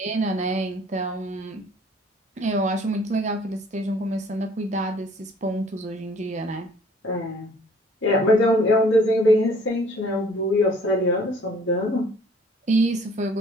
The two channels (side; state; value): both; normal; correlation 0.56